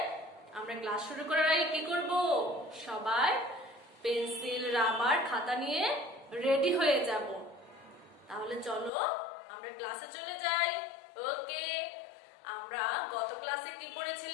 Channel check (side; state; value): right; drops out; at 8.9 s